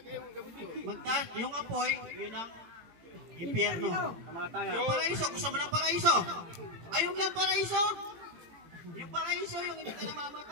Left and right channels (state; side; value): late; left; 18 ms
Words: Magtaas, yung apoy, yun ang impyerno. Yung paraiso, gusto mo ng paraiso? Ayaw mo ng paraiso? Yung paraiso, yung hindi ka